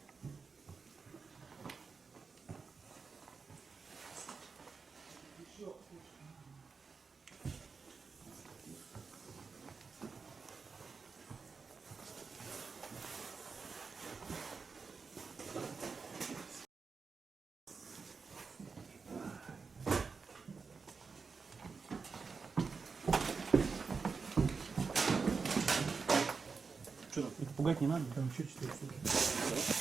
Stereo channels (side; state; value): left; quieter; 4.9 dB